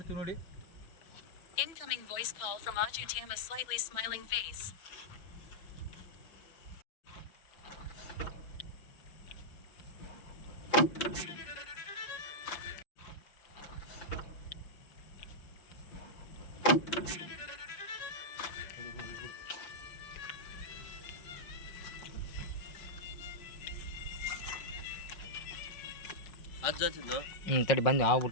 ನೋಡಿ. Incoming voice call from Ajutam, a slightly smiling face. ತಡಿ ಬಂದು ಹಾವು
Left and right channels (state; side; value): late; right; 5.6 ms